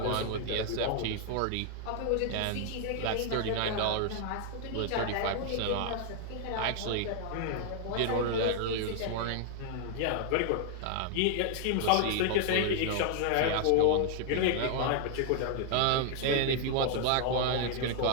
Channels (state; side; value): different; both; correlation 0.00